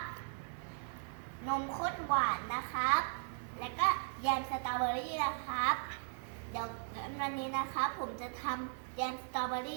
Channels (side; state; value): left; silent; digital silence